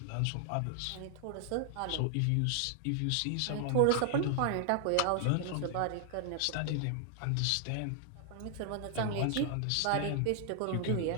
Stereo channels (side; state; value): both; different; correlation 0.00